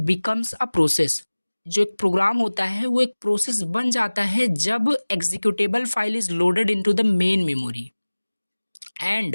बिकम्स अ प्रोसेस, जो एक प्रोग्राम होता है वो एक प्रोसेस बन जाता है जब executable file is loaded into the main memory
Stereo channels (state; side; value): inverted; both; correlation -1.00